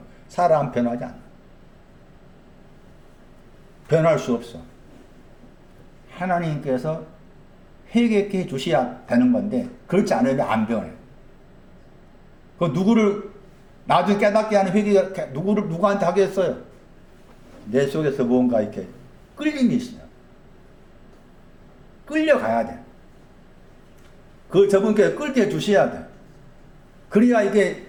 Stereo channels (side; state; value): both; identical; correlation 1.00